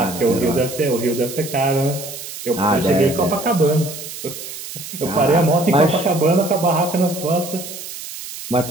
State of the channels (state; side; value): noise; right; hiss, 11 dB below the sound